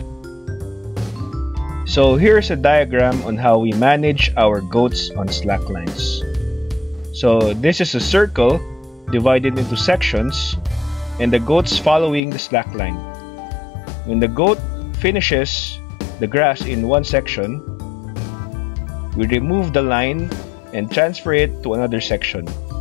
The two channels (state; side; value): drops out; right; at 12.2 s